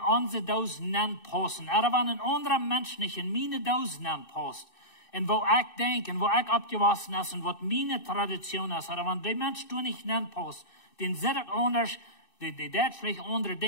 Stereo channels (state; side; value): late; right; 2.6 ms